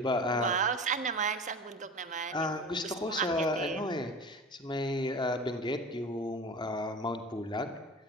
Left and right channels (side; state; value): both; normal; correlation 0.35